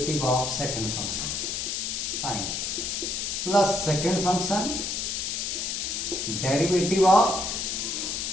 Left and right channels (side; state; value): left; noise; hiss, 2 dB below the sound